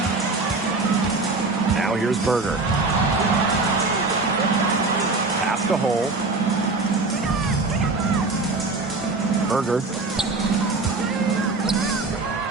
Now here's Berger. Pass to Hole. Berger.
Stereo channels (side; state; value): left; quieter; 3.6 dB